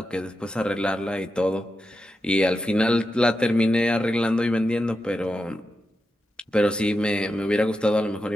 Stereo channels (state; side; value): normal; both; correlation 0.89